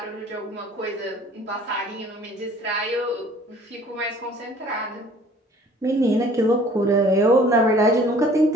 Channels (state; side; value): normal; both; correlation 0.52